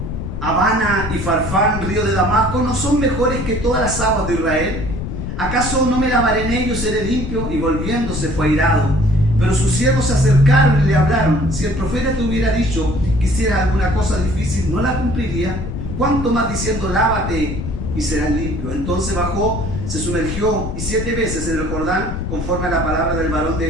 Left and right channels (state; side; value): noise; left; rumble, 5 dB below the sound